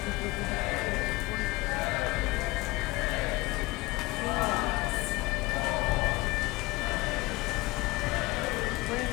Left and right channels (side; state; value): right; quieter; 21.5 dB